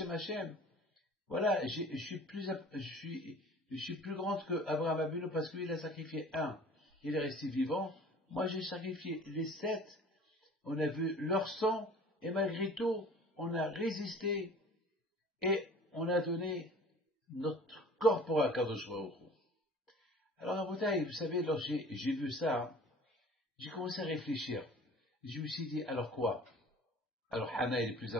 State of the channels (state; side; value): normal; both; correlation 0.46